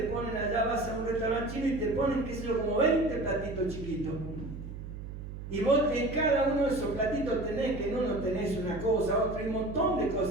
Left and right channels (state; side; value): noise; right; hum, 10 dB below the sound